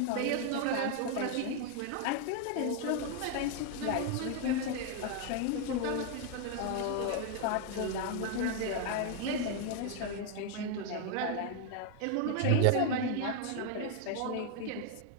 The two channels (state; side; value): different; both; correlation 0.01